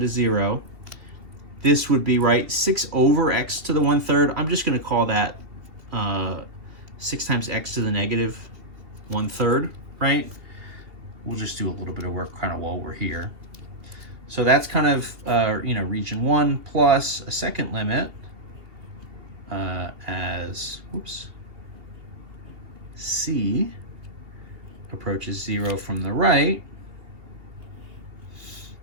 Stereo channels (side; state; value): left; late; 2.8 ms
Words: 0. This would be, right, 6 over x to the 1/3. I'm just going to call that 6 times x to the -1/3, right? We'll just do a little bit of work kind of while we're here. So that's kind of, region 1 plus a second limit as, c approaches 0 from the right